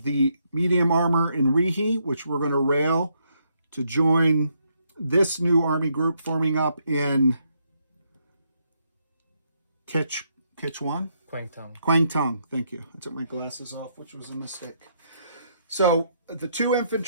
the medium armor in Rihi, which we're going to rail to join this new Army group forming up in Keichow? Kwangtung, thank you. I took my glasses off, which was a mistake. So the 2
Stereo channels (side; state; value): both; inverted; correlation -0.75